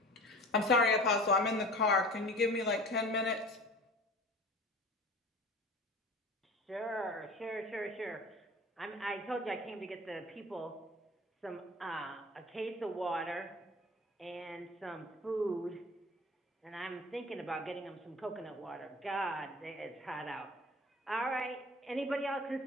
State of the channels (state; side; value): normal; both; correlation 0.40